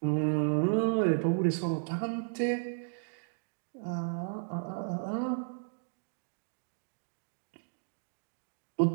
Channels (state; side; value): silent; left; digital silence